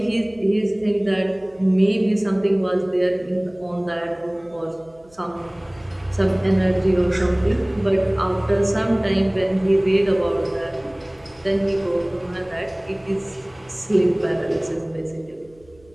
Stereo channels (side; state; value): right; noise; hum, 29 dB below the sound